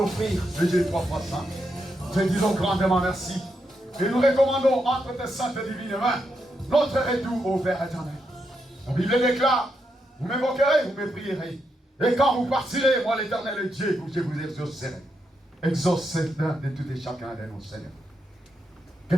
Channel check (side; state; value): both; normal; correlation 0.82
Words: le Dieu trois fois saint? Te disons grandement merci. Et nous recommandons entre tes saintes et divines mains notre retour au Père éternel. La Bible déclare, vous m'évoquerez, vous me prierez. Et quand vous partirez, moi l'éternel Dieu, je vous exaucerai. Exauce l'un de tout et chacun de nous, Seigneur. Que